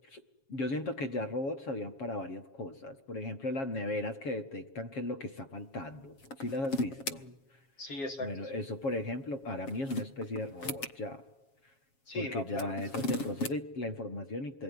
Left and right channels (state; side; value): late; right; 7.3 ms